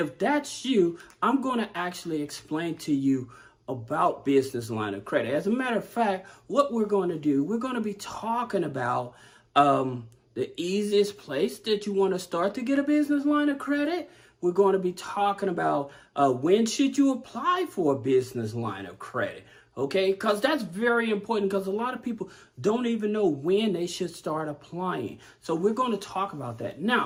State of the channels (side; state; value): both; identical; correlation 1.00